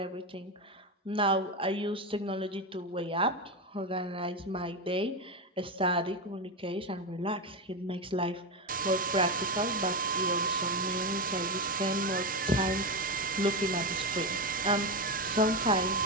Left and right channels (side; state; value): both; normal; correlation 0.13